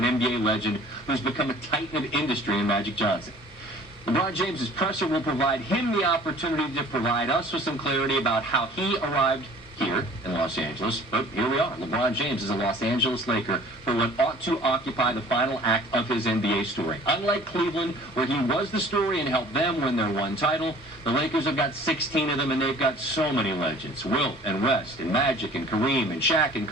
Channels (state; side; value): normal; both; correlation 0.49